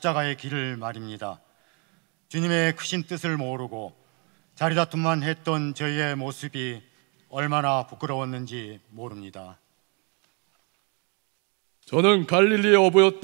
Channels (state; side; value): quieter; left; 34.5 dB